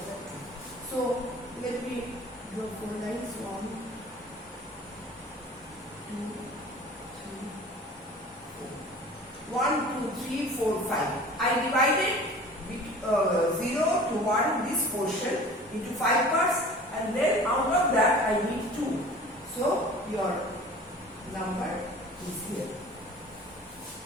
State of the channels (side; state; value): both; normal; correlation 0.43